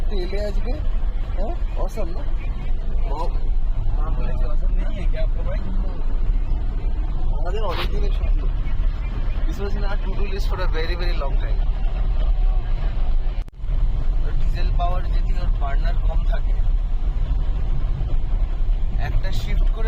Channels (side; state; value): both; identical; correlation 1.00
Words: এলে আজকে, হ্যাঁ অসম না মা বলেছে অসম নেই কি আপনার ভাই, আমাদের অনেক দিনের স্বপ্ন। This was in our to-do list for a very very long time. Diesel power যদি ওর বার্নার কম থাকে, একটা শিফট